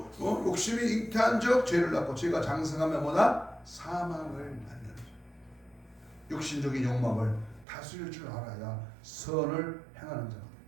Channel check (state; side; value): drops out; left; at 7.7 s